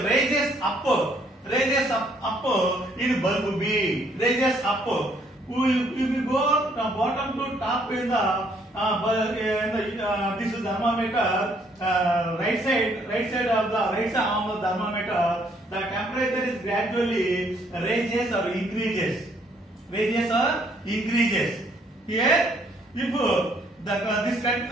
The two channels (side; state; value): both; normal; correlation 0.67